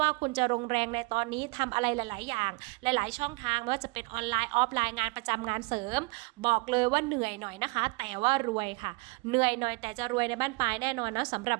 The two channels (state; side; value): quieter; left; 27.3 dB